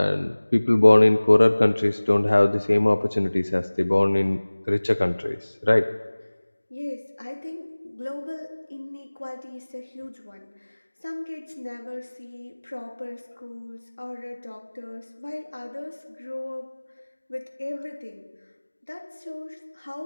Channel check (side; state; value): both; inverted; correlation -1.00